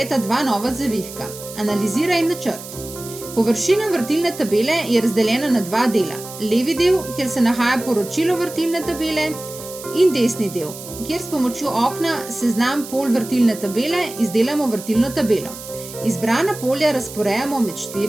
dva nova zavihka, Analizira in Načrt. Površina vrtilne tabele je razdeljena na dva dela. Levi del, kjer se nahaja poročilo vrtilne tabele, in desni del, kjer s pomočjo okna Seznam polj vrtilne tabele izdelamo vrtilno tabelo. Izbrana polja razporejamo med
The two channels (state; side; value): noise; right; hiss, 13 dB below the sound